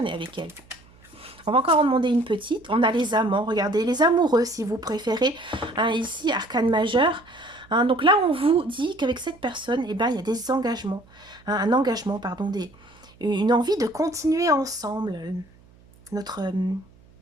avec elle. On va encore en demander une petite. On a les amants, regardez, les amoureux si vous préférez. Hein, ici, arcane majeur. Hein, donc là, on vous dit qu'avec cette personne, eh ben, il y a des engagements. Hein, un engagement, pardon, une envie de continuer ensemble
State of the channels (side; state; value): right; noise; hum, 27 dB below the sound